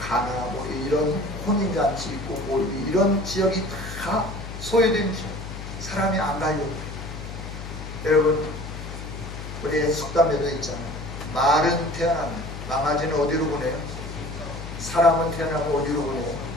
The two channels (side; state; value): left; noise; hum, 9 dB below the sound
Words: 이런 혼인잔치 있고 이런 지역이 다 소유된 지역. 사람이 안 가려고. 여러분, 우리 속담에도 있잖아요. 말은 태어나면 망아지는 어디로 보내요? 사람은 태어나면 어디로 보내요?